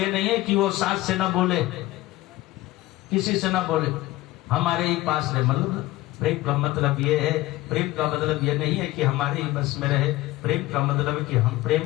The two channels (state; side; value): quieter; right; 17.8 dB